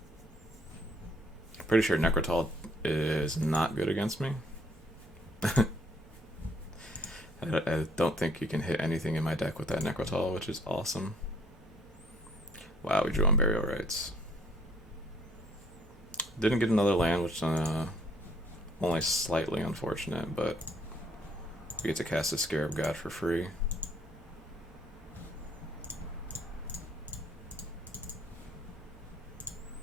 Pretty sure Necrotol is not good against me. I don't think you can hit anything in my deck with that Necrotol, which is awesome. Wow, we drew on Burial Rites. Didn't get another land, which only slightly unfortunate, but we get to cast a Scarab God for free.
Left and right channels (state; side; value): normal; both; correlation 0.64